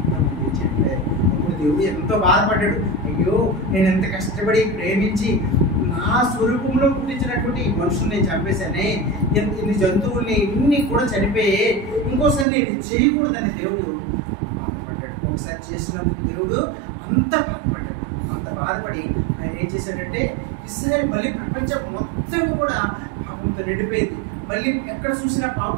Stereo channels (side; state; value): left; drops out; at 12.5 s